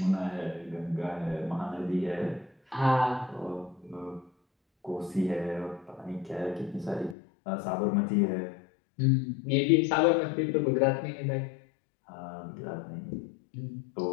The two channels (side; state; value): right; drops out; at 7.2 s